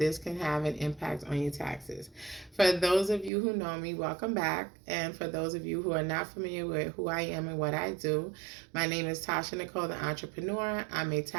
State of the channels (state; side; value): drops out; left; at 3.3 s